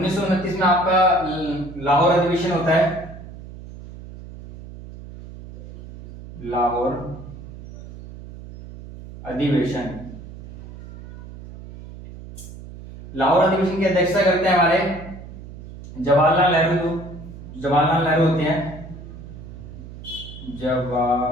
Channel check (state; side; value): noise; right; hum, 14 dB below the sound